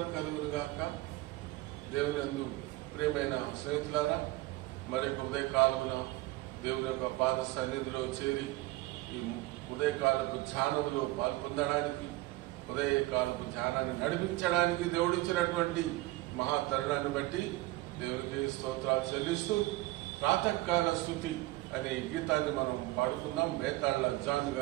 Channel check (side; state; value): left; quieter; 18.9 dB